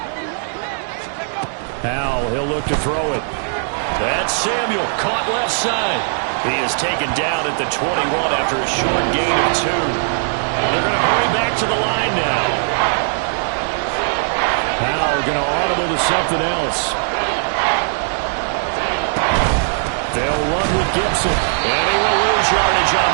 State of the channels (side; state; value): left; silent; digital silence